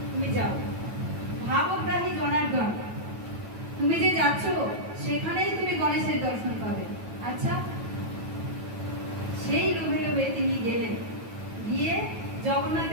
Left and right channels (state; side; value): late; left; 9.2 ms